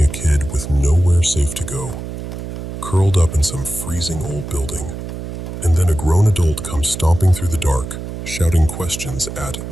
a kid with nowhere safe to go, curled up in some freezing old building, and then a grown adult comes stomping through the dark, shouting questions at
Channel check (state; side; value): noise; right; hum, 8 dB below the sound